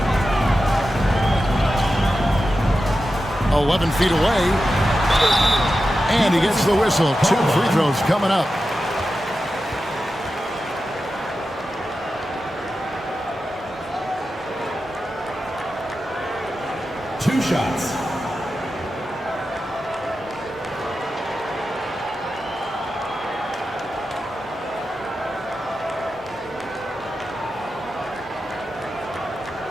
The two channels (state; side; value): normal; both; correlation 0.91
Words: 11 feet away. And he gets the whistle. 2 free throws coming up. Two shots.